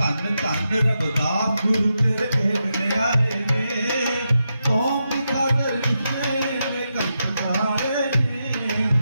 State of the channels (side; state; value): both; inverted; correlation -0.86